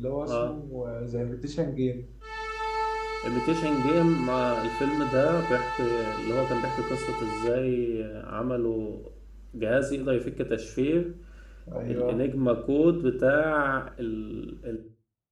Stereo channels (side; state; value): both; identical; correlation 1.00